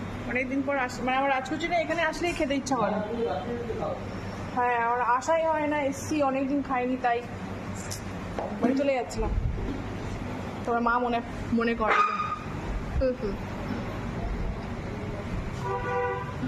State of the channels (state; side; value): identical; both; correlation 1.00